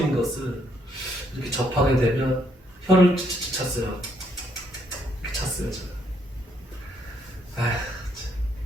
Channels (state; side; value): normal; both; correlation 0.71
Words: 것을 이렇게 접하게 되면 혀를 찼어요. 찼어요, 제가. 아휴,